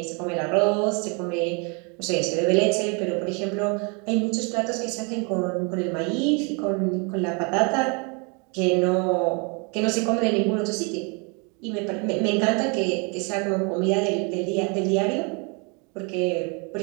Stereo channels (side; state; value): left; quieter; 33.2 dB